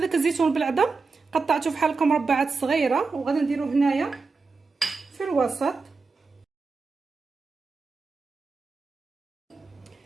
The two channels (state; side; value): quieter; left; 4.4 dB